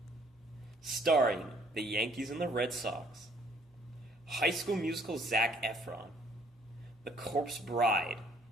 Starring the Yankees and the Red Sox, High School Musical Zac Efron, The Corpse Bride,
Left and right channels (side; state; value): both; normal; correlation 0.62